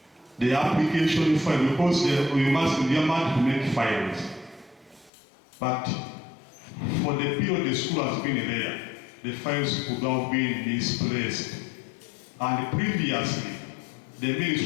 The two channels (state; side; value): drops out; right; at 5.1 s